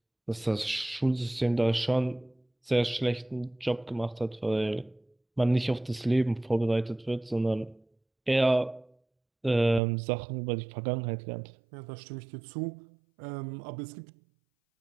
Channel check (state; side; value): drops out; left; at 9.8 s